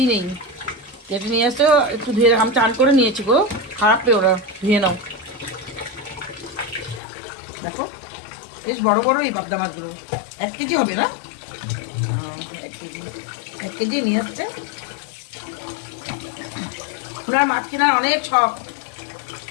নেই। কেটে নিয়ে আসছে, একটু ধুয়ে আমি টান করে নিয়েছি গো, খারাপ পেয়ে ওরা, ধুয়ে নাও। দেখো বেশ বড় বড় এই পাবদা মাছগুলো, 1 কেজি হবে না? 1 কেজি, 1 কেজি নিয়ে আসছে। ওনার মাছ কেনার অনেক শখ,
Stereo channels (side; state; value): right; drops out; at 7.0 s